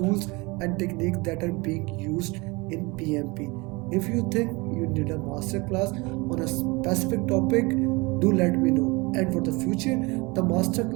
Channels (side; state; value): left; quieter; 25.5 dB